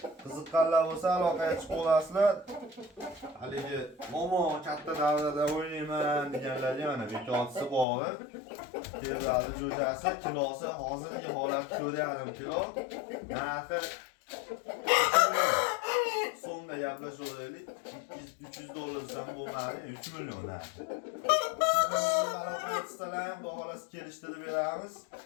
Qiziqqanlar bo'lsa aloqaga chiqib olasizlar. Haligi momo katta davrada o'ynayman deganlarga mana bekotisi bor. Fevralni jo'jasi kilosi hozirgi holatda 4,5 kilo. Narxi so'mda gaplashaveraylik. 300 dollar desam bo'lmaydi, 3 million narxi. Siz aloqa etsalar ham xudo xolasi kelishtirib beramiz.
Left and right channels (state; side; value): drops out; right; at 7.9 s